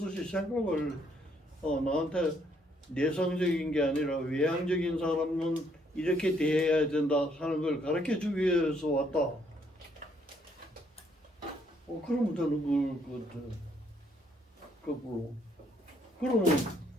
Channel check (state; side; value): normal; both; correlation 0.69